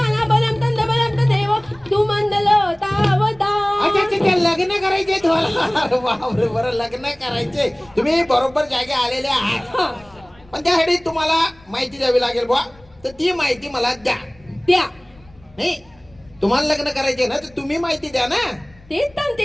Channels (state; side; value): noise; left; rumble, 27 dB below the sound